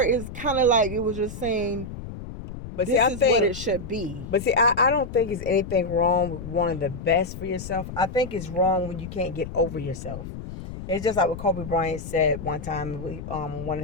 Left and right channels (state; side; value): noise; left; rumble, 10 dB below the sound